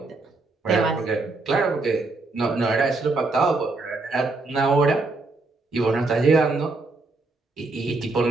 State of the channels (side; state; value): left; quieter; 3.5 dB